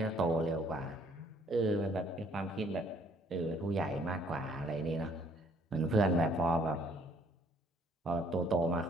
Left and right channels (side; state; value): both; normal; correlation 0.62